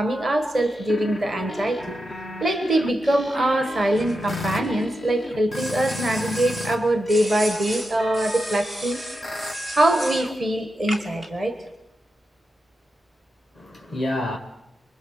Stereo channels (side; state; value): both; normal; correlation 0.88